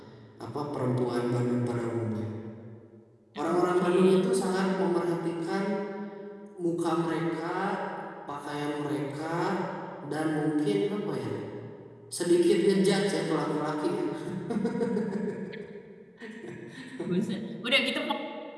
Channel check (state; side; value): identical; both; correlation 1.00